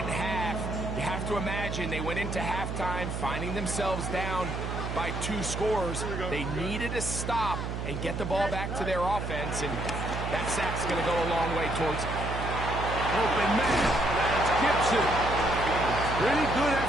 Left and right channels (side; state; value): right; noise; hum, 4 dB below the sound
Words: half. You have to imagine they went into halftime finding themselves down by 2 scores. They needed to stop and get the ball back to their offense, and that sack's going to go a long way towards it. Open man. That's Gibson. Pretty good